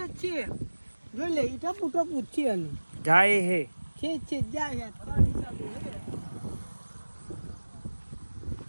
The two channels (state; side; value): inverted; both; correlation -1.00